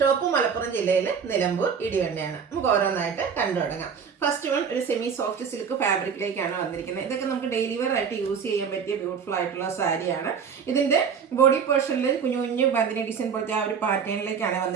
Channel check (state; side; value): quieter; left; 6.6 dB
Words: മലപ്പുറം ജില്ലയിൽ നിലമ്പൂർ ഇടിവണ്ണയാണ്. നമുക്ക് ഓരോന്നായിട്ട് കണ്ടു തുടങ്ങാം. ഫസ്റ്റ് വൺ ഒരു സെമി സോഫ്റ്റ് സിൽക്ക് ഫാബ്രിക്കിലേക്കാണ് വന്നിരിക്കുന്നത്. ഇതൊക്കെ നമുക്ക് ഡെയിലി വെയർ ആയിട്ട് യൂസ് ചെയ്യാൻ പറ്റിയ ബ്യൂട്ടിഫുൾ ആയിട്ടുള്ള സാരിയാണ്. ഇതിന്റെ ബോഡി പോർഷനിൽ കുഞ്ഞു കുഞ്ഞു ബന്ദിനി ഡിസൈൻ പോലത്തെ ആ ഒരു പാറ്റേണിലേക്കാണ്